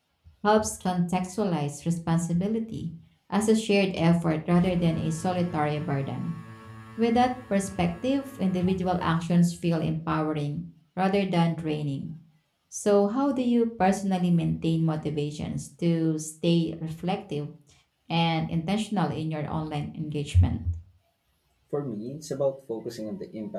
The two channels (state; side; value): identical; both; correlation 1.00